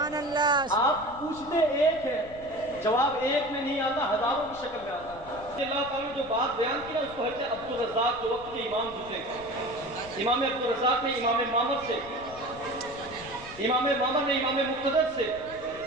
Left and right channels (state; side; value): noise; left; rumble, 18 dB below the sound